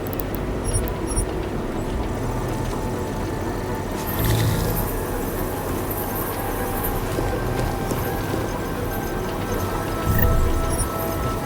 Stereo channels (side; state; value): both; identical; correlation 1.00